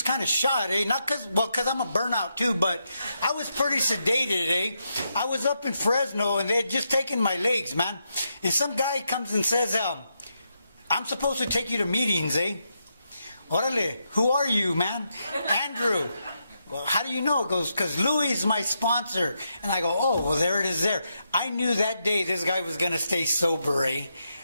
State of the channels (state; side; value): inverted; both; correlation -0.82